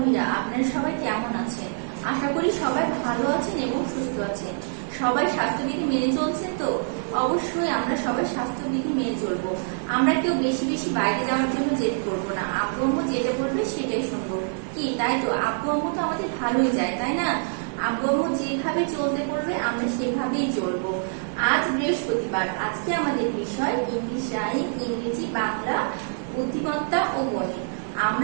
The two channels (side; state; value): left; silent; digital silence